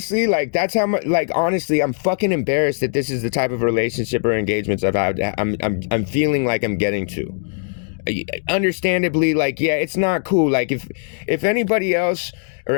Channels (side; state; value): right; silent; digital silence